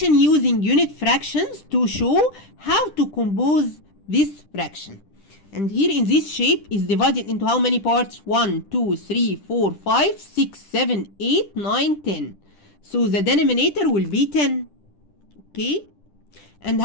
using unit fractions to show how to compose this fraction. And here in this shape is divided into how many parts? 1, 2, 3, 4, 5, 6, 7, 8, 9, 10. So the denominator will be 10. Okay? And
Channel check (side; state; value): right; late; 10 ms